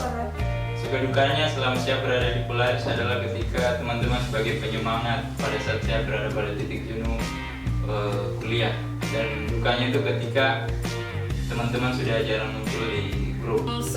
Suka dukanya selama saya berada di Polaris adalah ketika teman-teman sebagai penyemangat pada saat saya berada pada titik jenuh kuliah. Dan dukanya itu ketika teman-teman sudah jarang muncul di grup.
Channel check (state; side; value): identical; both; correlation 1.00